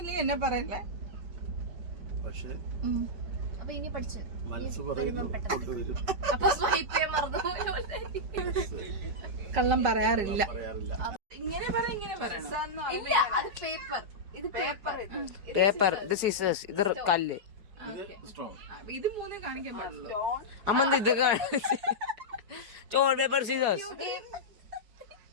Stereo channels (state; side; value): late; left; 4.8 ms